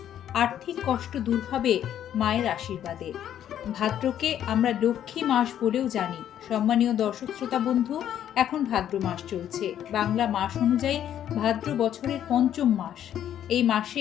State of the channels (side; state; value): right; quieter; 10.5 dB